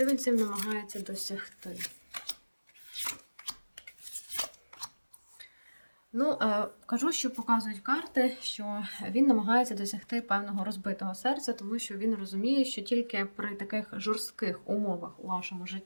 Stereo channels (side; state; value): both; inverted; correlation -1.00